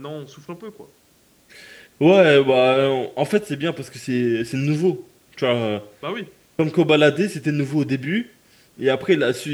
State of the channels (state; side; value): identical; both; correlation 1.00